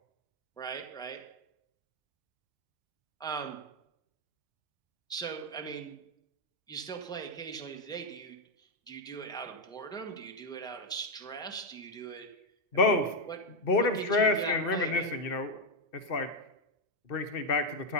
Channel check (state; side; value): normal; both; correlation 0.03